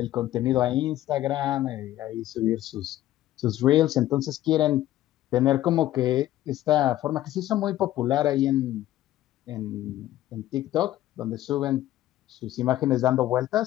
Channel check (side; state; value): right; quieter; 14.1 dB